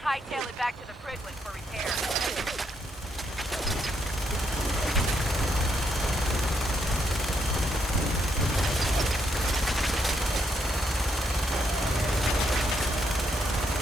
Hightail it back to the Prydwen for repair.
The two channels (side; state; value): both; normal; correlation 0.76